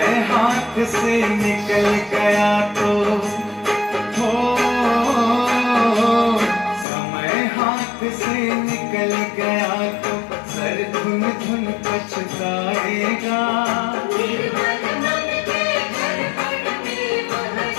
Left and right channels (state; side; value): drops out; right; at 6.9 s